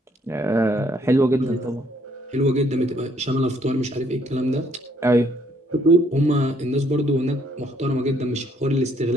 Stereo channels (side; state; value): both; normal; correlation 0.67